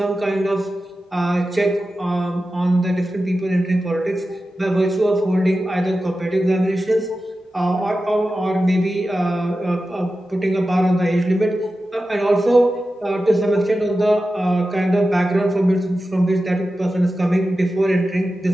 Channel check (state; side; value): normal; both; correlation 0.93